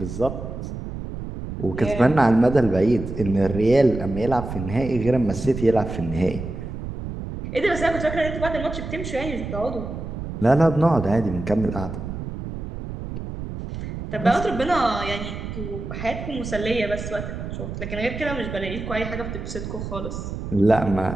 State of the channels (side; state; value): right; noise; rumble, 7 dB below the sound